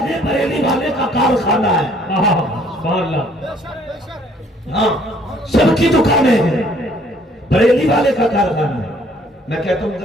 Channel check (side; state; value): both; normal; correlation 0.61